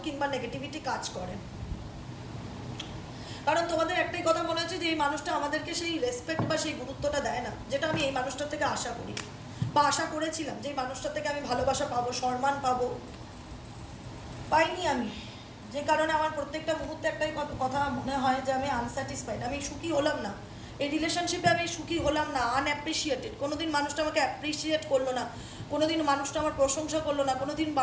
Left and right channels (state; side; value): identical; both; correlation 1.00